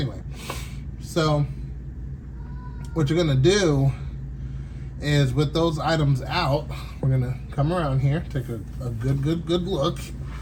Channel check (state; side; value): identical; both; correlation 1.00